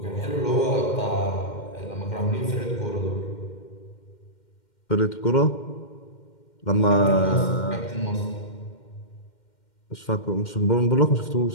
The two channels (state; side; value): late; right; 2.1 ms